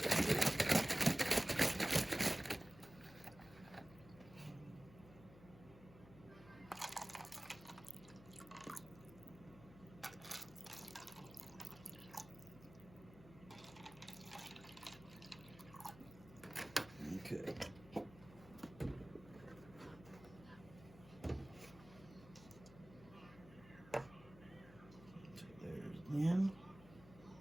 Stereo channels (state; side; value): noise; left; hum, 19 dB below the sound